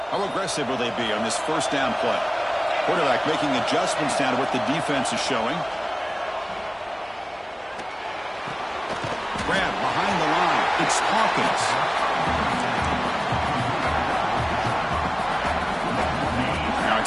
How aggressive will they be on this first down play? Quarterback making adjustments down to what the defense is showing. Grab behind the line. It's Hawkins. Now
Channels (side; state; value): both; identical; correlation 1.00